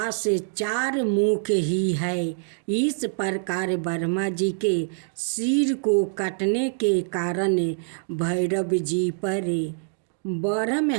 4 मुख ही है। इस प्रकार ब्रह्मा जी के सिर को कटने के कारण भैरव जी पर ब्रह्म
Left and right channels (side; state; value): left; silent; digital silence